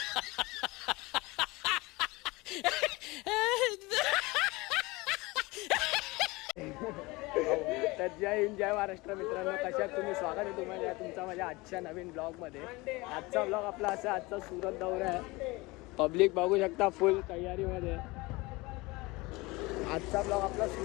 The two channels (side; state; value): right; quieter; 23.1 dB